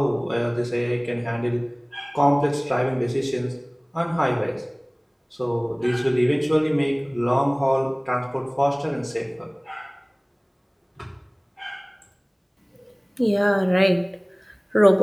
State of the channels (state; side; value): identical; both; correlation 1.00